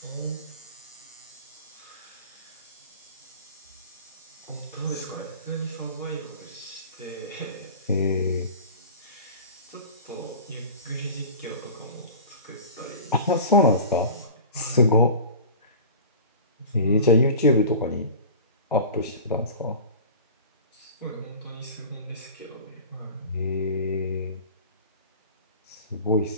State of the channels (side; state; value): both; inverted; correlation -0.37